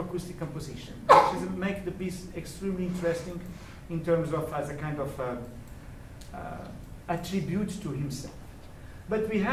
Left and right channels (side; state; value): both; identical; correlation 1.00